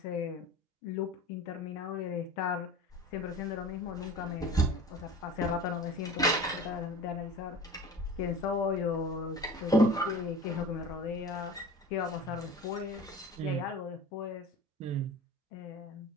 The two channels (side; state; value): both; normal; correlation 0.38